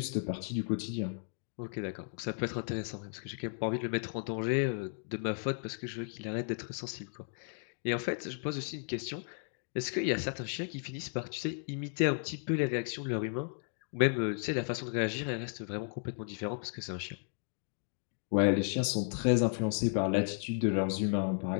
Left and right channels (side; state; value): right; silent; 55 dB below the other